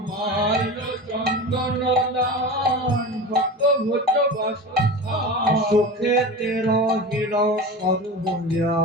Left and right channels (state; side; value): normal; both; correlation 0.30